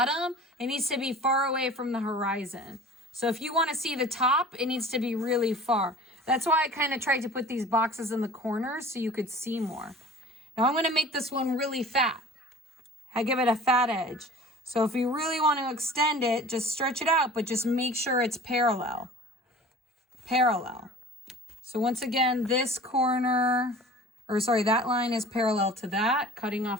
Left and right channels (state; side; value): normal; both; correlation 0.43